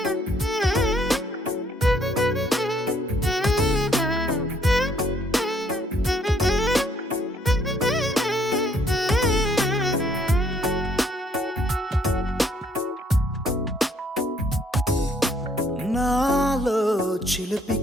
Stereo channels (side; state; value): both; normal; correlation 0.66